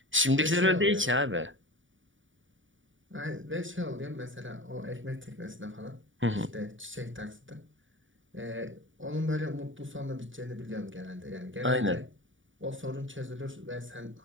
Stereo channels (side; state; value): left; late; 0.56 ms